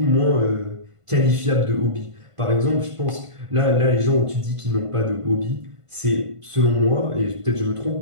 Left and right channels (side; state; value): left; late; 1.5 ms